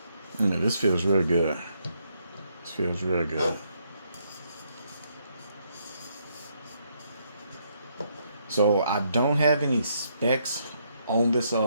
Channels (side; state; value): both; inverted; correlation -0.74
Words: This feels really good. This feels really good. So I don't have any specs on this